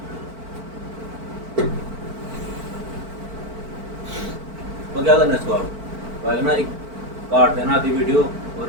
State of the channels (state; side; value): late; left; 4.5 ms